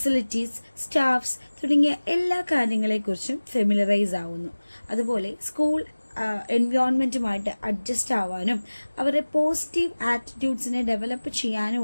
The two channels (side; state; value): both; inverted; correlation -1.00